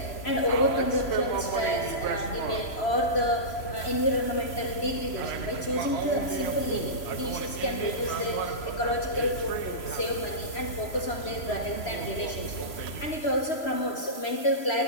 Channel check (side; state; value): right; late; 3.0 ms